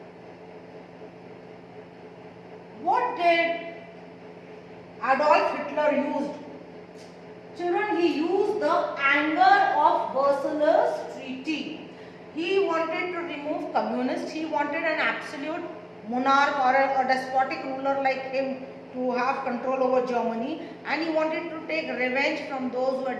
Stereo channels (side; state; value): both; identical; correlation 1.00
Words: what did Adolf Hitler used. Children, he used the anger of Versailles Treaty. He wanted to remove communists. He wanted an absolute monarch or a despotic ruler like him to have control over Germany, and he wanted to take revenge from those who had